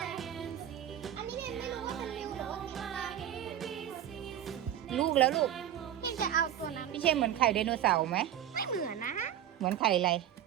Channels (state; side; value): quieter; left; 10.9 dB